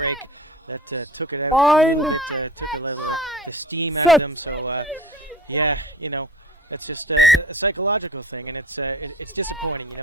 that took it out. Took a little steam out of them. So, it's just a psychological thing, and it's disappointing.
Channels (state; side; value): normal; both; correlation 0.41